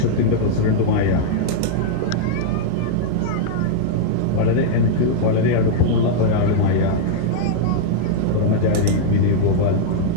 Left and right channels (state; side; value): different; both; correlation -0.02